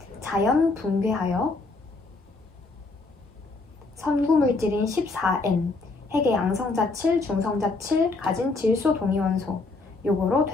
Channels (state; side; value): quieter; right; 3.5 dB